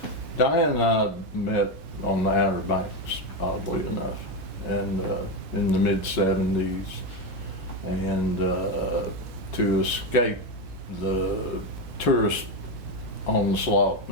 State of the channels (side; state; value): both; normal; correlation 0.11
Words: Diane and I met on the Outer Banks, oddly enough, and in the mid-70s. And to escape the tourist onslaught